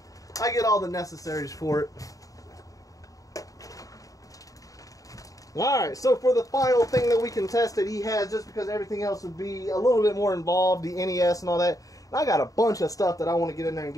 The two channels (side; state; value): right; late; 0.17 ms